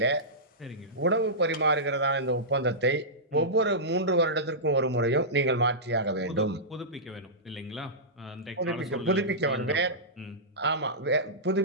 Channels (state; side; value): normal; both; correlation -0.16